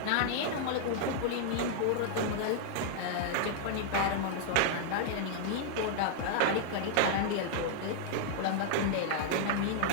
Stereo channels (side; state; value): both; different; correlation -0.01